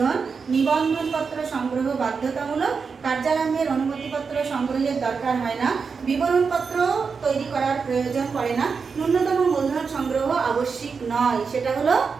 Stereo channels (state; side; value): quieter; left; 5.4 dB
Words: নিবন্ধনপত্র সংগ্রহ বাধ্যতামূলক, কার্যারম্ভের অনুমতিপত্র সংগ্রহের দরকার হয় না, বিবরণপত্র তৈরি করার প্রয়োজন পড়ে না, ন্যূনতম মূলধন সংগ্রহ আবশ্যিক নয়, সেটা হলো